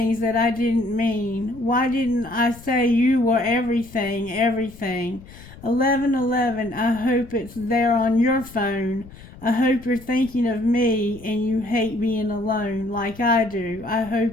that I didn't mean? Why didn't I say you were everything, everything? 11:11, I hope it's there on your phone. I hope you're thinking of me and you hate being alone like I do. I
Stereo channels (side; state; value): left; noise; rumble, 19 dB below the sound